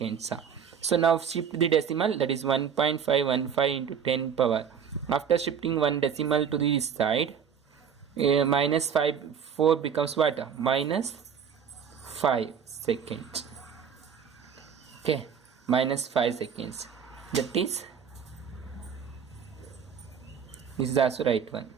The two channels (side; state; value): left; quieter; 7.4 dB